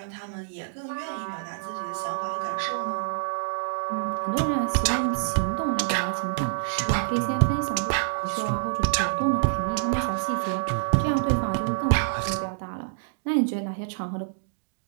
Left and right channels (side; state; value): left; silent; digital silence